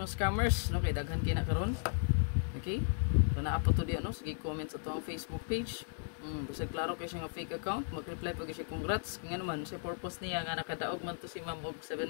scammers, no? Kay daghan kay na karon. Okay? So naa pa to di ano, sige comment sa tuang Facebook page. Bisag klaro kay siya nga fake account, mag-reply pag siya congrats. Kaya naman, sa purpose niya nga nakadaog man to si ma'am og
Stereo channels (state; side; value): silent; right; digital silence